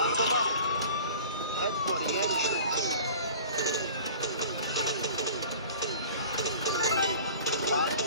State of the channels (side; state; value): both; inverted; correlation -0.42